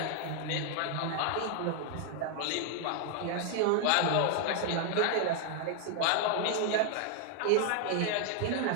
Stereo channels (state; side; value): different; both; correlation 0.00